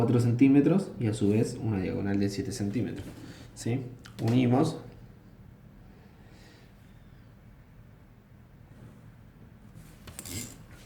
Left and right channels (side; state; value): both; identical; correlation 1.00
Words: centímetros y a su vez una diagonal de 7 centímetros. ¿Sí? Unimos